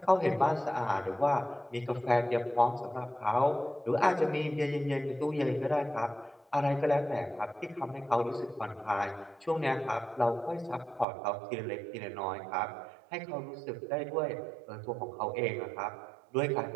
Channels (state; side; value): drops out; left; at 11.1 s